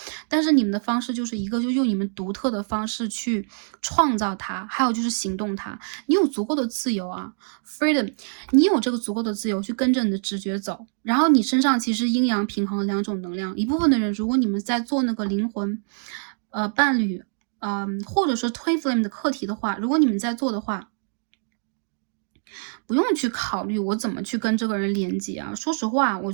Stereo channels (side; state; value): left; silent; digital silence